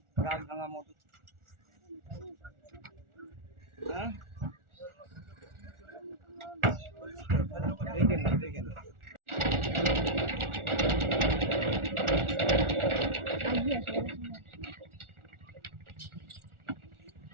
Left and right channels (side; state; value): left; late; 1.4 ms